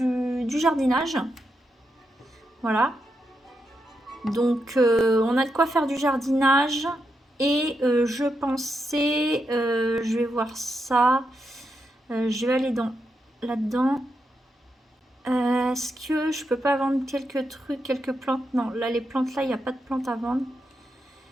jardinage. Voilà. Donc on a de quoi faire du jardinage. Et je pensais, je vais voir ça. Je vais aller là-dedans. Est-ce que je peux pas vendre quelques trucs, quelques plantes? Non, là les plantes là, il n'y a pas de plantes à vendre.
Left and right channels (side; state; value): both; normal; correlation 0.84